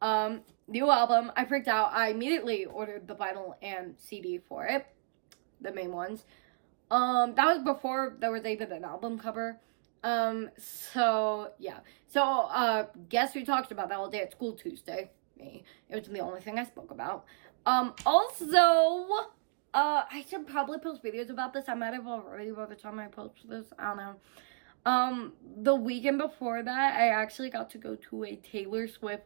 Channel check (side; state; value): left; silent; digital silence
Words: New album, I freaked out. I immediately ordered the vinyl and CD for it, the main ones. That was before there was even an album cover. So, yeah. So, guess who talked about that all day at school Tuesday? Me. It was the only thing I spoke about. Also, I should probably post videos about this. I might have already by the time I post this. I don't know. The weekend before that, I actually got to go to a Taylor